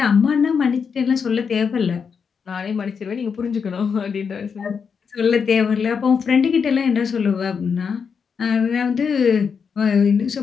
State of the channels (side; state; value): right; quieter; 6.2 dB